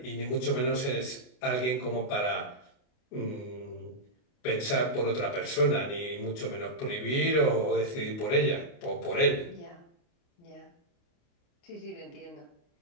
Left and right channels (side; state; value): right; late; 29 ms